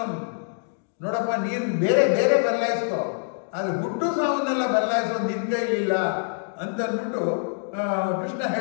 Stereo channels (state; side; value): silent; right; digital silence